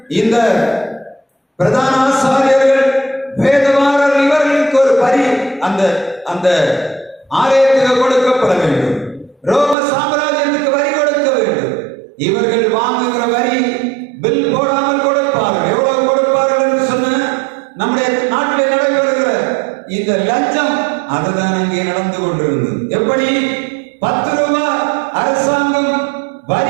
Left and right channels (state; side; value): drops out; left; at 9.8 s